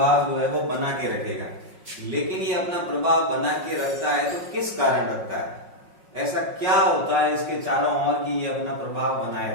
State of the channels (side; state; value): left; late; 5.5 ms